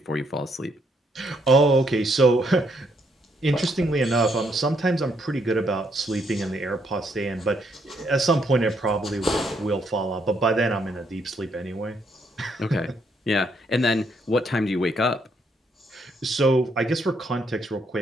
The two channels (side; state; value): both; normal; correlation 0.73